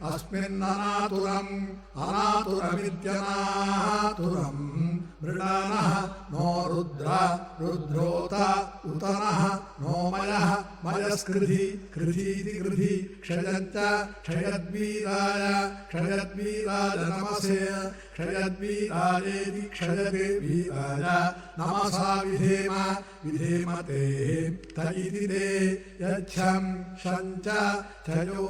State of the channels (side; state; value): both; identical; correlation 1.00